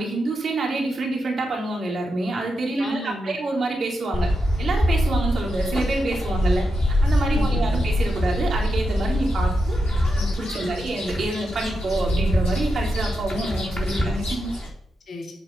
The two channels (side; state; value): both; normal; correlation 0.86